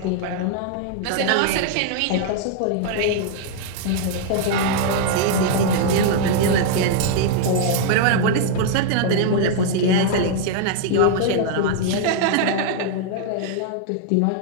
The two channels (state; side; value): different; both; correlation -0.01